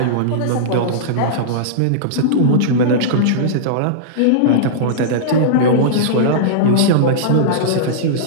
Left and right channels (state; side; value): different; both; correlation -0.03